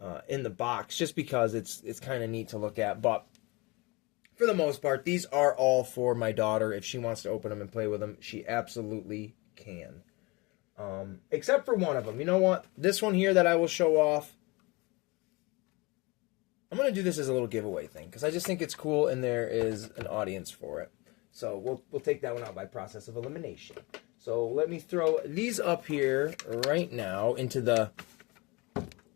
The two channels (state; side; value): quieter; right; 25.5 dB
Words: in the box just because it's kind of neat to look at. But for the most part, these are all for my daughter. If she wants to open them and play with them, she absolutely can. Except for one of them. You know what? This one here that I will show off, I'm going to do this as a little giveaway thing because I just think it's cool and there is an audience for it. So we'll take that one out by process of elimination. So let me throw these up here right now into the